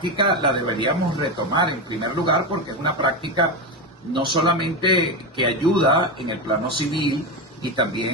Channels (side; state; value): both; normal; correlation 0.15